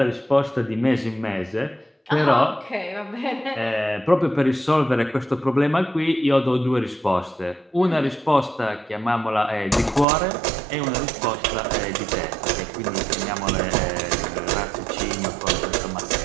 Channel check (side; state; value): left; drops out; at 10.1 s